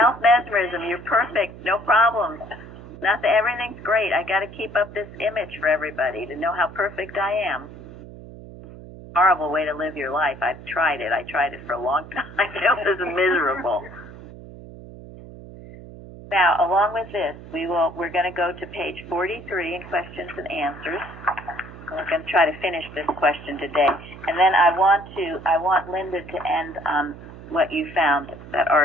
You're perfect. No problems. Nothing. Everything's great. I got to keep up this image for everybody to know how perfect I am. Horrible way to live your life. I've tried it. I tried it for a long time. It was miserable. Now, along with this, we're going to go to page 43 in questions and answers. We're going to try to finish this question today, and then I want Linda to end on what you found, that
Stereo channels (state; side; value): noise; right; hum, 16 dB below the sound